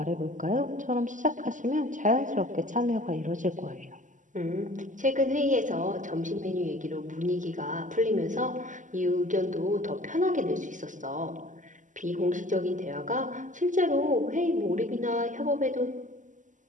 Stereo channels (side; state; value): left; late; 0.37 ms